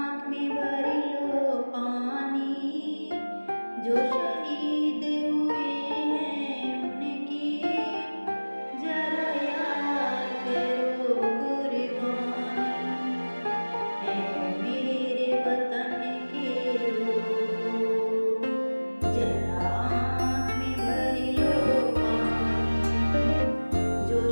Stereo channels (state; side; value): inverted; both; correlation -1.00